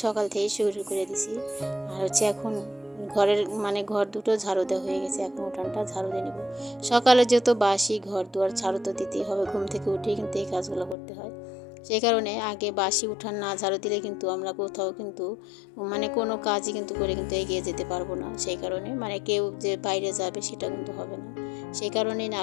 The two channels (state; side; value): drops out; right; at 11.0 s